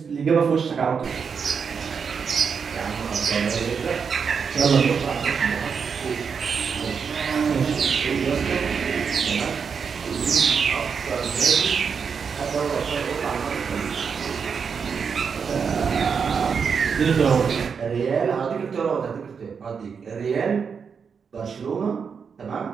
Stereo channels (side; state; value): left; quieter; 6.2 dB